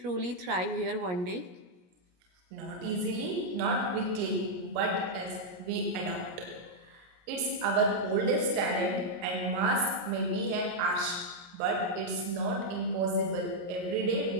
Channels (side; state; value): left; late; 17 ms